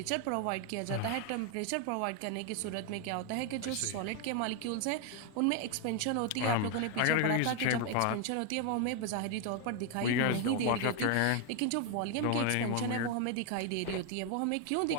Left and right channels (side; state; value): both; different; correlation 0.01